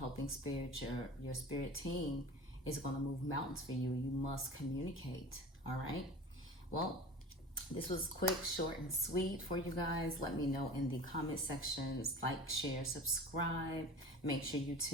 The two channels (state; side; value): normal; both; correlation 0.37